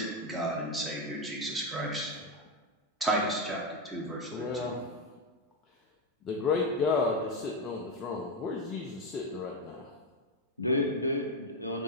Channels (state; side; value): normal; both; correlation 0.08